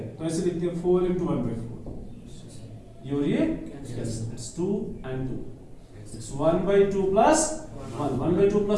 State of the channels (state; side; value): identical; both; correlation 1.00